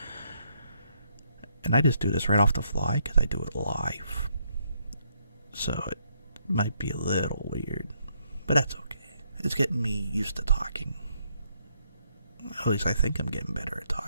And I just do this right off the fly because I do it live. So it might be a little weird. But that's okay. It's getting me used to talking. At least I think I'm getting better at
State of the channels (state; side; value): inverted; both; correlation -0.74